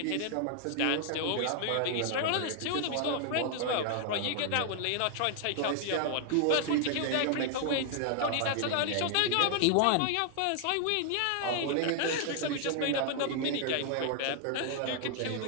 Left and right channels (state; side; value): different; both; correlation 0.00